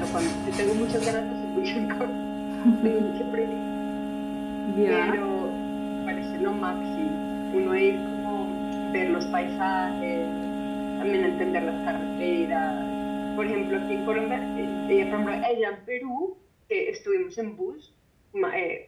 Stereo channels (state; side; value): identical; both; correlation 1.00